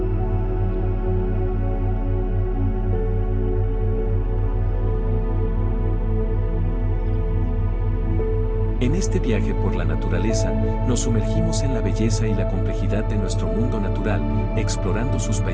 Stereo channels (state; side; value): identical; both; correlation 1.00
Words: En este viaje por la naturaleza, nos sumergimos en la belleza y la complejidad de nuestro mundo natural, explorando sus